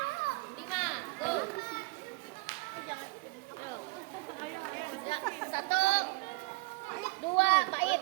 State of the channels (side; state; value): left; quieter; 25.8 dB